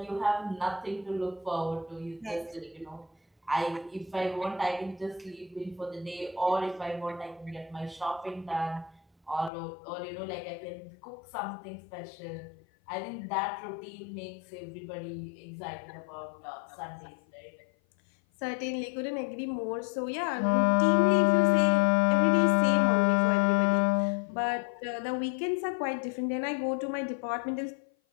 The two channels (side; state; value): right; drops out; at 9.5 s